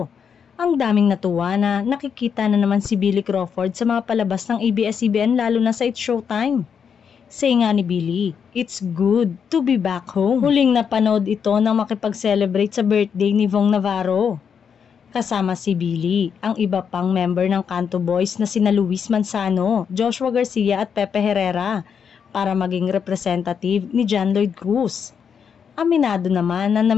Ang daming natuwa na nakikita na naman si Billy Crawford sa mga palabas ng ABS-CBN lalo na sa It's Showtime. Say nga ni Billy, "It's good to be back home." Huling napanood ito nang makipag-celebrate sa birthday ni Vong Navarro. Kasama si Billy, ang iba pang member ng Canto Boys na sina Luis Manzano, Joshua Garcia at Pepe Herrera para maging representative ni John Lloyd Cruz. Aminado naman na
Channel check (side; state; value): right; quieter; 7.0 dB